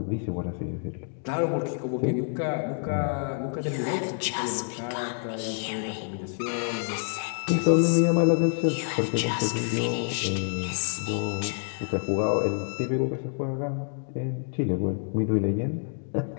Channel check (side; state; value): right; silent; 60 dB below the other